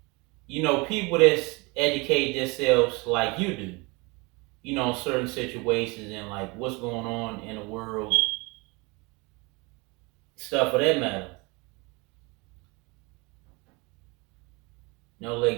People that's educate themselves like you do. Certain situations and like what's going on in the world, stuff of that matter.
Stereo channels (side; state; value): left; quieter; 27.0 dB